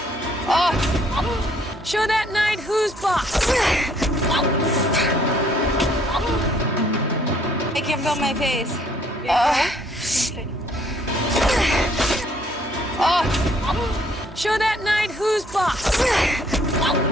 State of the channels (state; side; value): normal; both; correlation 0.64